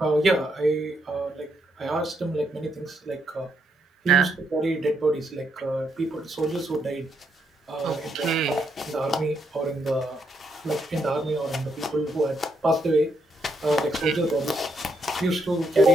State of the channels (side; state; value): both; normal; correlation 0.77